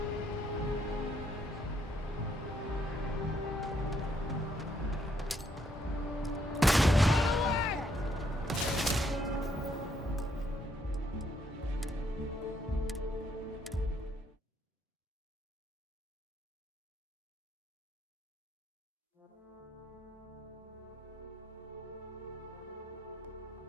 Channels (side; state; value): both; normal; correlation 0.72